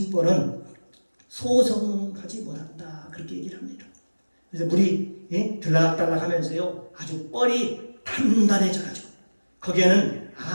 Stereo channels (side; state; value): both; inverted; correlation -1.00